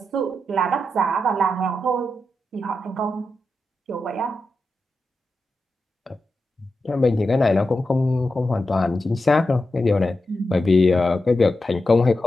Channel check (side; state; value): both; normal; correlation 0.89